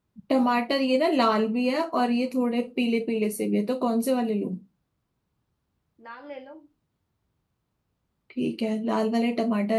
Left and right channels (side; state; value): both; identical; correlation 1.00